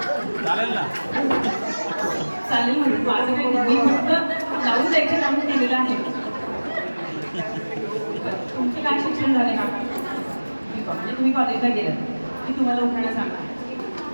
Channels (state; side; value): inverted; both; correlation -1.00